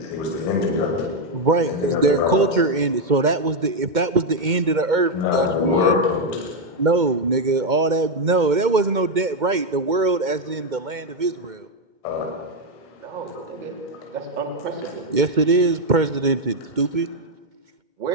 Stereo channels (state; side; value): late; left; 2.1 ms